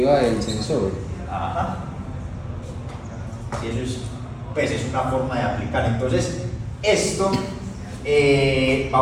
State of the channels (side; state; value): both; identical; correlation 1.00